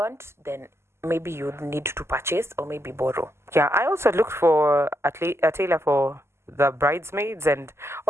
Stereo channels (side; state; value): left; late; 0.13 ms